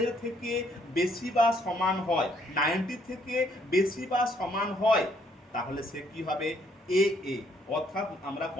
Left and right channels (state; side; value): normal; both; correlation 0.68